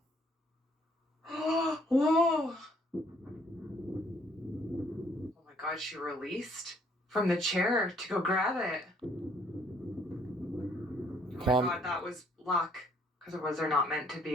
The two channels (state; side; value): normal; both; correlation 0.64